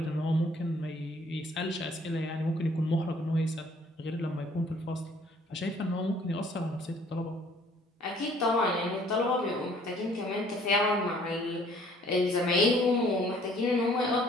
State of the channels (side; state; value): both; normal; correlation 0.58